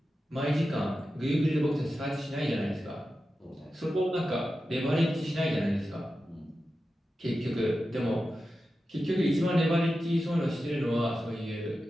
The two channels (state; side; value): normal; both; correlation 0.92